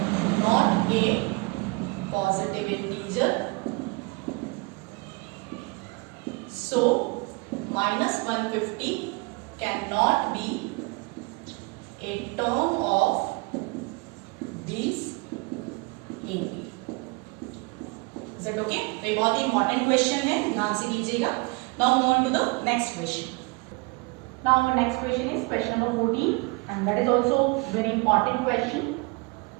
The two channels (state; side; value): quieter; left; 27.9 dB